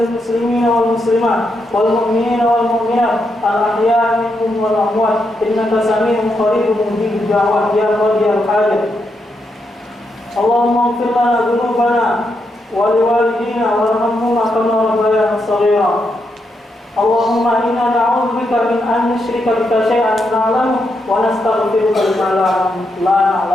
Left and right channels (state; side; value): normal; both; correlation 0.82